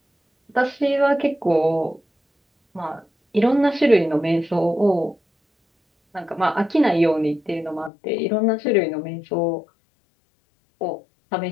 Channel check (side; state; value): right; drops out; at 7.9 s